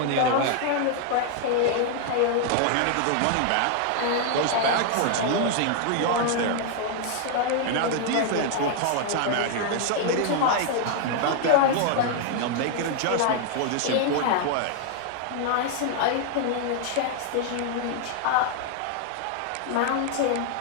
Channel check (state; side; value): different; both; correlation 0.00